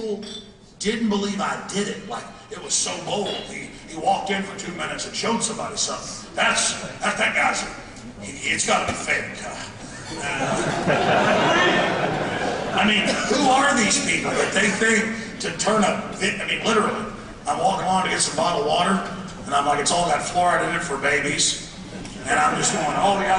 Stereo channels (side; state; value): both; identical; correlation 1.00